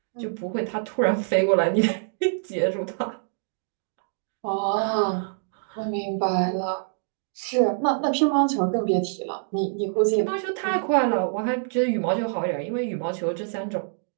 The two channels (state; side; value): silent; left; digital silence